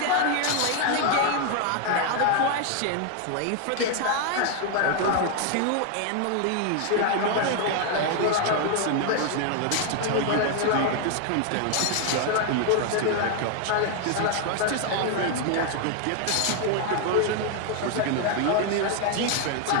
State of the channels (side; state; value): both; different; correlation 0.00